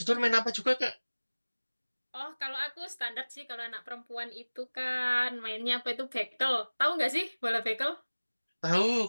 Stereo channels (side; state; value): both; inverted; correlation -1.00